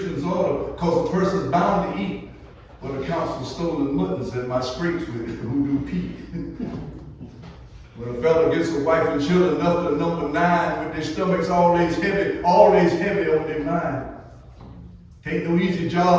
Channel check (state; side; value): identical; both; correlation 1.00